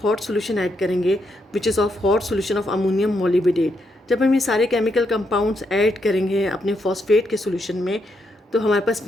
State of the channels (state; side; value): normal; both; correlation 0.79